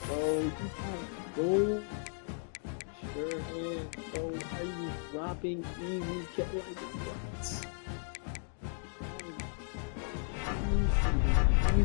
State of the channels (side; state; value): right; silent; 55 dB below the other